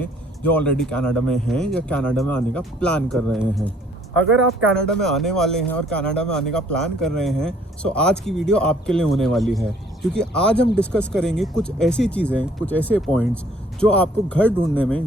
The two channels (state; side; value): normal; both; correlation 0.60